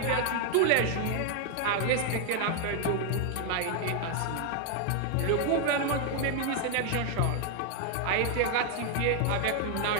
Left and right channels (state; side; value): different; both; correlation 0.00